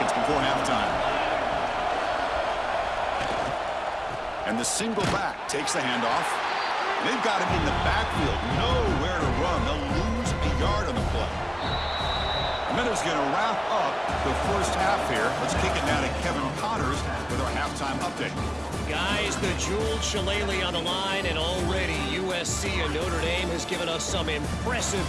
before halftime. And the single back takes the handoff. They've got him in the backfield, nowhere to run. They'll lose a yard on the play. And then it's going to wrap up the first half here. Let's kick it now to Kevin Connors with our halftime update. Guys, the jeweled Shillelagh on the line, and already USC and Notre Dame has given us some impressive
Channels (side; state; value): both; identical; correlation 1.00